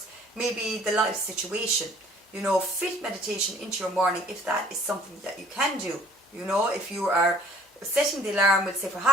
maybe the life situation, you know. Fit meditation into your morning if that is something that you can do, you know. If you are setting the alarm, we'll say for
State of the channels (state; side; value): normal; both; correlation 0.55